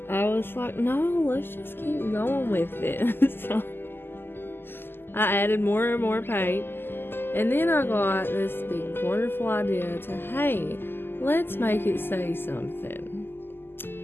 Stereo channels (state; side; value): late; right; 0.10 ms